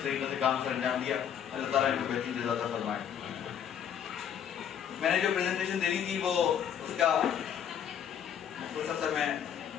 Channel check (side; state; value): right; quieter; 8.9 dB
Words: طریقے سے کام سر انجام دیا. اللہ تعالیٰ ان کو بہترین جزا عطا فرمائے. میں نے جو پریزنٹیشن دینی تھی وہ اس کا مختصر سا میں